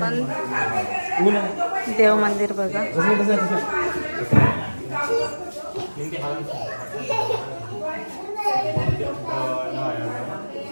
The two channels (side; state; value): both; inverted; correlation -1.00